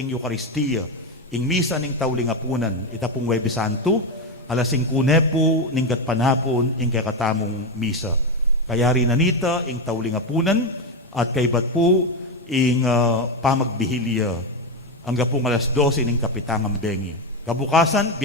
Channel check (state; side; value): normal; both; correlation 0.11